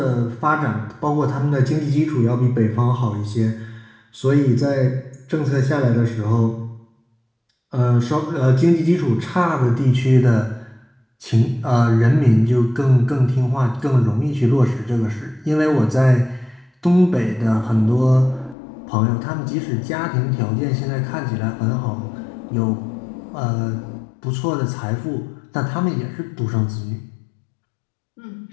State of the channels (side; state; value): right; drops out; at 18.6 s